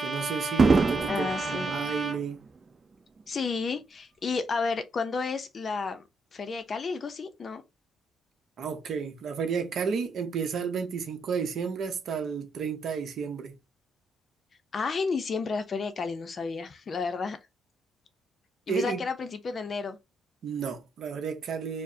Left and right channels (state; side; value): normal; both; correlation 0.76